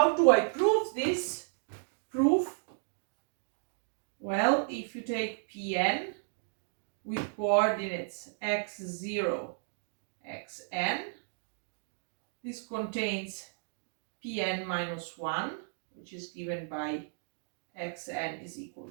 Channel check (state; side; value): silent; left; digital silence